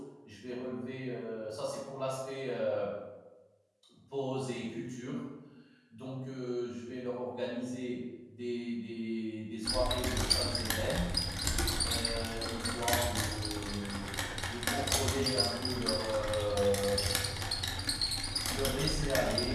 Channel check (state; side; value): identical; both; correlation 1.00